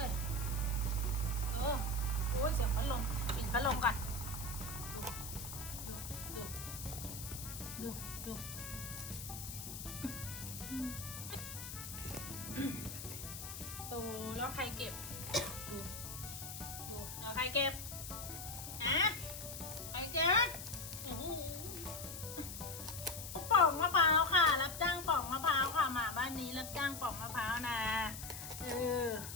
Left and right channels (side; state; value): left; noise; hiss, 9 dB below the sound